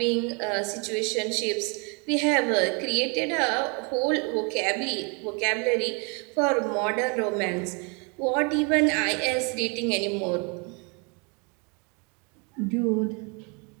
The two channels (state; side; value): quieter; left; 33.4 dB